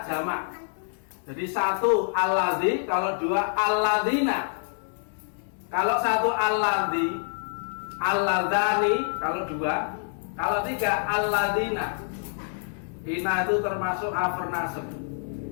jamak. Jadi satu aladzi, kalau dua aladina. Kalau satu aladzi, aladani, kalau dua. Kalau tiga aladina. Ina itu termasuk harf nasab.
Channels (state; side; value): silent; right; digital silence